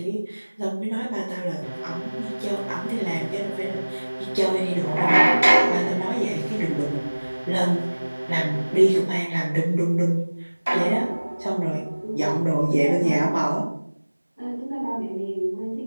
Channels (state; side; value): inverted; both; correlation -1.00